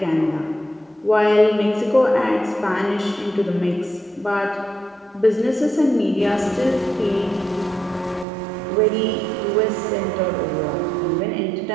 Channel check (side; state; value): left; drops out; at 8.2 s